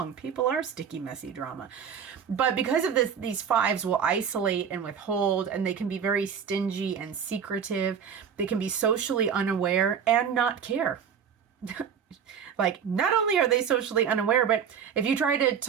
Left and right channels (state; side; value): quieter; left; 7.5 dB